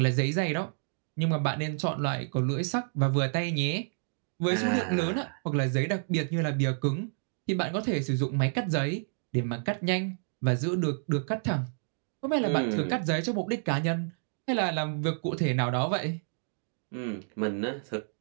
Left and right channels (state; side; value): silent; left; digital silence